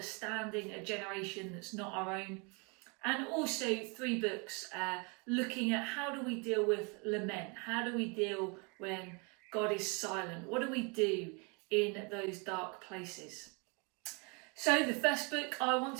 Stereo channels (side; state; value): left; quieter; 32.2 dB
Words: a generation that's not our own, and also 3 books looking at how do we deal with lament, how do we deal when God is silent, what do we do in those dark places. So the first book I want